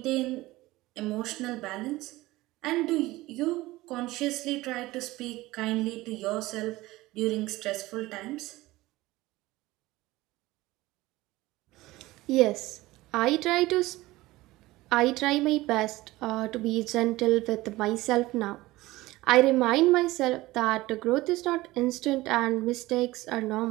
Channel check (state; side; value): quieter; left; 18.7 dB